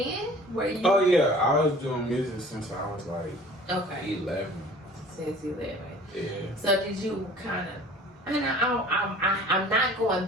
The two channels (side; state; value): both; normal; correlation 0.47